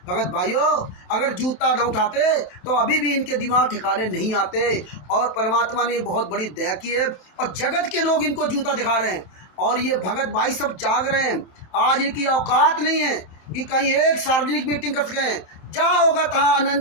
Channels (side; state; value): right; late; 27 ms